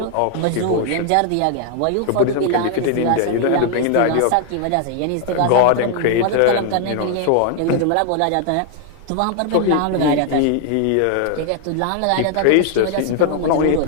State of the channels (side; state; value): both; different; correlation 0.00